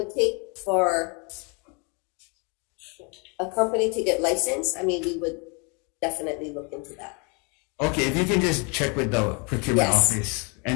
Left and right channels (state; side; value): quieter; right; 33.1 dB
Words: take for a company to get licensed, I mean, we would definitely look into that. Okay, if you can just check with the procurement office,